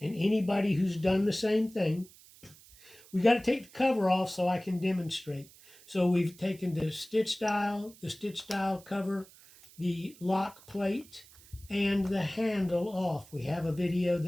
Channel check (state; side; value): noise; right; hiss, 23 dB below the sound